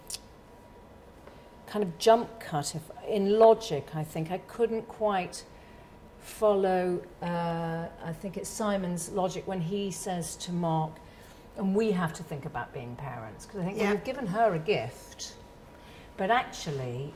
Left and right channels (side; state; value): both; identical; correlation 1.00